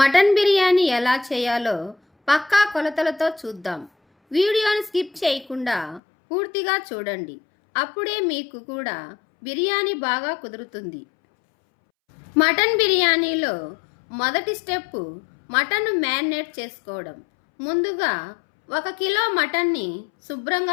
బిర్యానీ ఎలా చేయాలో పక్కా కొలతలతో చూద్దాం. వీడియోని స్కిప్ చేయకుండా పూర్తిగా చూడండి. అప్పుడే మీకు కూడా బిర్యానీ బాగా కుదురుతుంది. మటన్ బిర్యానీలో మొదటి స్టెప్ మటన్ మ్యారినేట్ చేసుకోవడం. ముందుగా 1 కిలో మటన్ని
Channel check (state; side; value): drops out; right; at 6.0 s